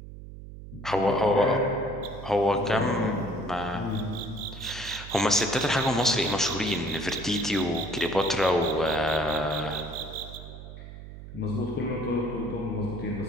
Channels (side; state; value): right; noise; hum, 13 dB below the sound